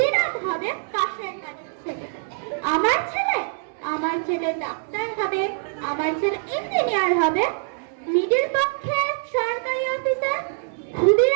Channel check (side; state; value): left; silent; digital silence